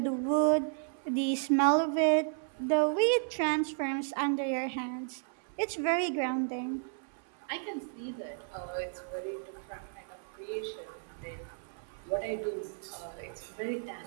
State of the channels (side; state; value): left; silent; 56 dB below the other